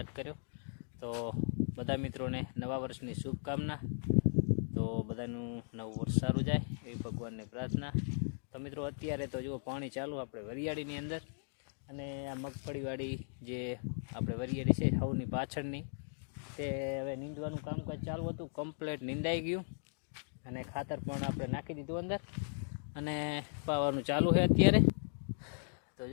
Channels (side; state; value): right; silent; digital silence